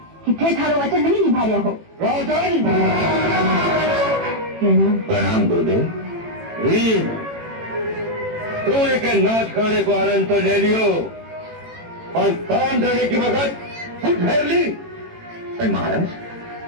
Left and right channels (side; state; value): left; late; 18 ms